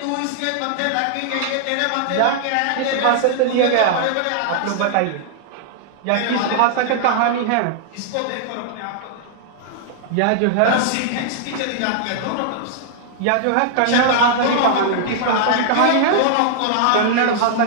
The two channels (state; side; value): different; both; correlation -0.01